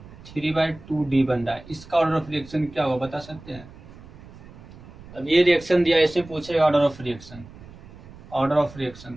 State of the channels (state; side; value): noise; right; rumble, 19 dB below the sound